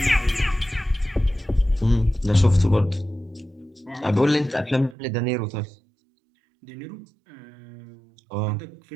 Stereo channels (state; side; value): drops out; left; at 5.0 s